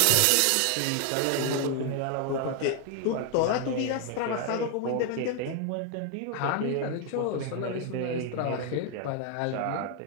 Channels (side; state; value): both; different; correlation 0.00